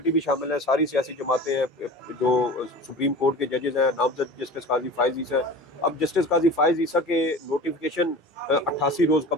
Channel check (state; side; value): normal; both; correlation 0.37